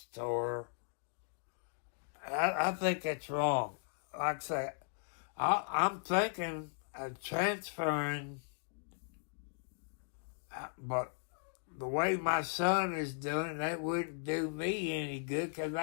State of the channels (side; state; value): right; silent; digital silence